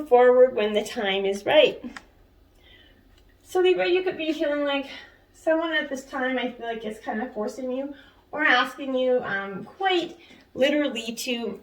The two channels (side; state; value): both; identical; correlation 1.00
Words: forward when the time is right. So Libra, you could be feeling like someone at this time I feel like is kind of forcing you or asking you quite literally to